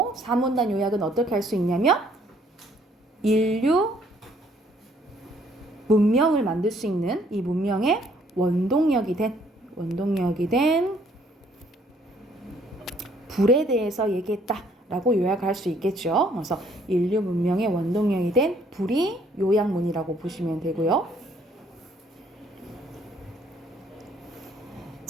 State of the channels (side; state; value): both; normal; correlation 0.64